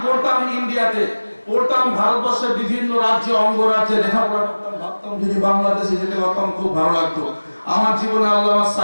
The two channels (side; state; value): both; inverted; correlation -1.00